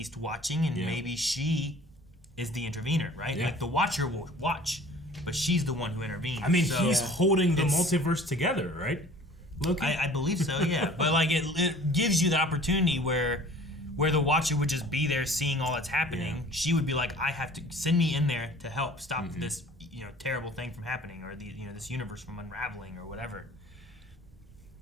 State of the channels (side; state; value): both; normal; correlation 0.48